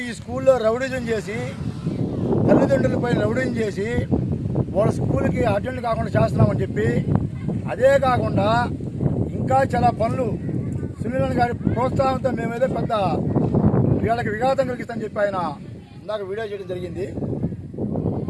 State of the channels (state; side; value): identical; both; correlation 1.00